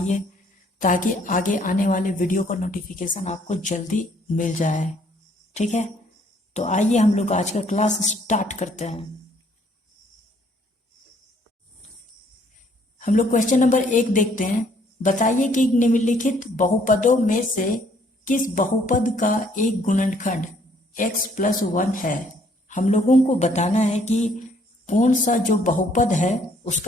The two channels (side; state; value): both; normal; correlation 0.64